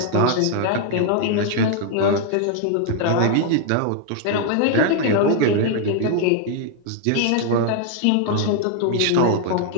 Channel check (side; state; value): both; different; correlation 0.00